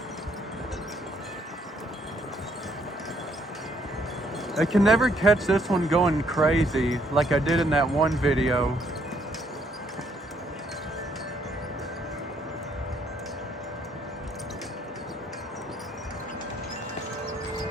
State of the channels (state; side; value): normal; both; correlation 0.69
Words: I can never catch this one going crazy like I did in that one video.